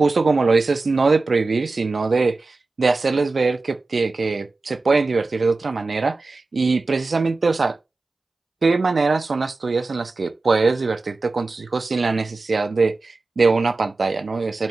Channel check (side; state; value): left; quieter; 3.6 dB